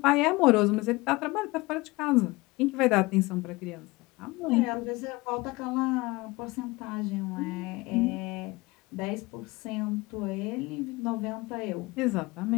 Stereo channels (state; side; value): quieter; right; 22.5 dB